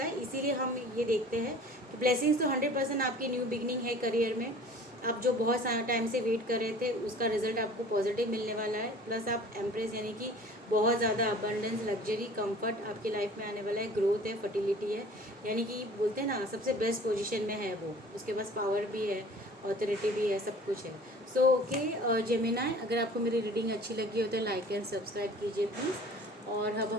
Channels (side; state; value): both; normal; correlation 0.46